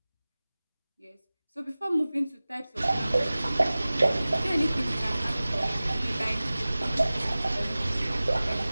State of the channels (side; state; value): both; inverted; correlation -0.98